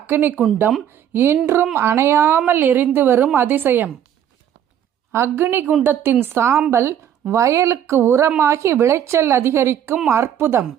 குண்டம் இன்றும் அணையாமல் எரிந்து வரும் அதிசயம். அக்னி குண்டத்தின் சாம்பல் வயலுக்கு உரமாகி விளைச்சல் அதிகரிக்கும் அற்புதம்.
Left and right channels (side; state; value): left; quieter; 9.9 dB